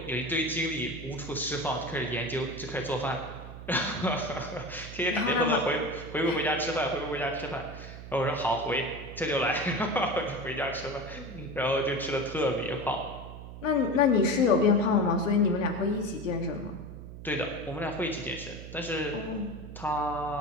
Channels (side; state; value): right; noise; hum, 12 dB below the sound